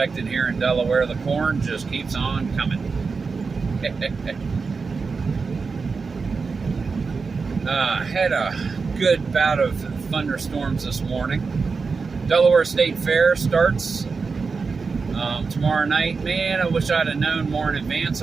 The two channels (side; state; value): left; quieter; 4.7 dB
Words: here in Delaware, the corn just keeps on coming. Had a good bout of thunderstorms this morning. Delaware State Fair starts tomorrow night. Man, I wish I'd have known more in advance.